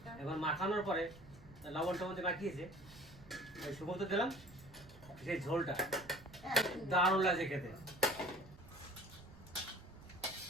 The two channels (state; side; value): noise; right; rumble, 20 dB below the sound